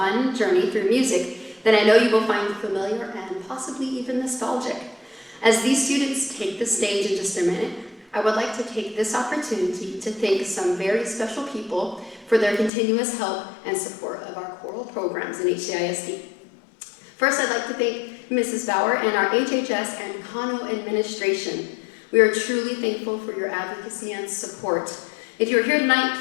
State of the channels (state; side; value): drops out; right; at 12.7 s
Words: journey through music that I know you will find familiar and possibly even nostalgic. As these students take the stage in just a minute, I would like to take this opportunity to thank some very special people for their continuous help and support of our choral programs in HCISD. First, I'd like to thank Mrs. Bauer and our HHS and Kano administration. We are truly thankful for your advocacy and support. If you're here tonight,